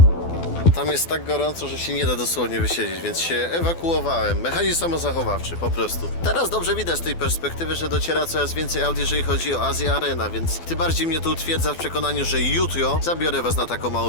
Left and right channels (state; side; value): late; right; 12 ms